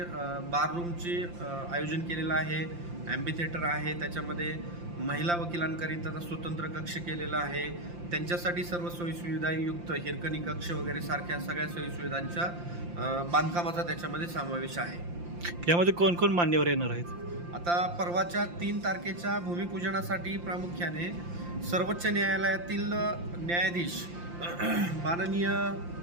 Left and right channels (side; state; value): left; late; 5.8 ms